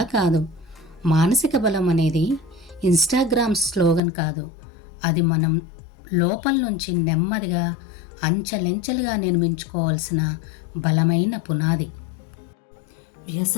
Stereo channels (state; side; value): drops out; right; at 4.0 s